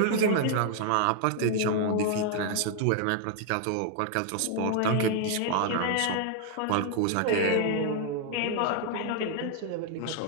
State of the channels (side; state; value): both; different; correlation 0.00